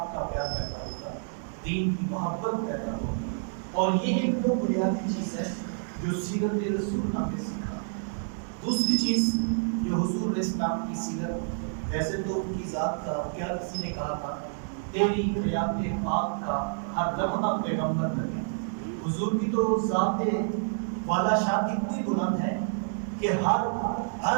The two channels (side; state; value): left; silent; digital silence